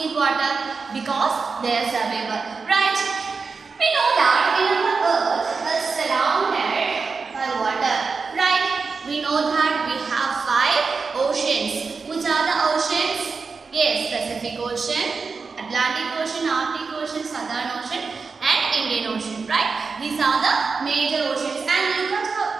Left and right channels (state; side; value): quieter; left; 4.7 dB